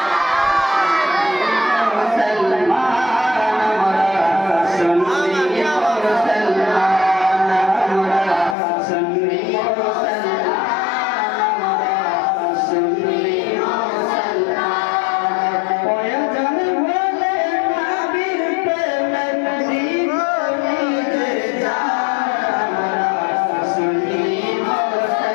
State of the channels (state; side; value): drops out; right; at 8.6 s